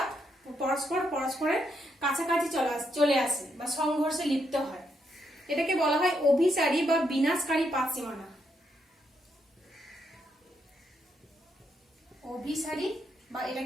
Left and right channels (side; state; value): both; normal; correlation 0.78